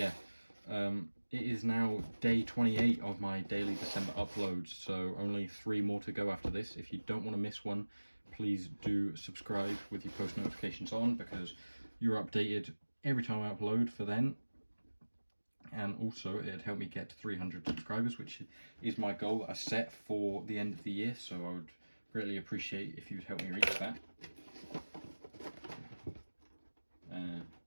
It is now day 28 of my daily December uploads, so only 3 more to go after this. If you don't want to miss one, please do subscribe with your post notifications on, because you're updated every time I upload for then. And also it'd help me get to 300 subscribers, which is my goal that I set for the end of the year, so I would greatly appreciate if you would help me reach that.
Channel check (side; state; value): both; inverted; correlation -1.00